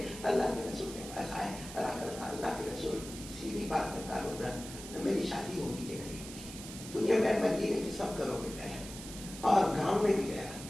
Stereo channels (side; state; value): right; noise; hiss, 12 dB below the sound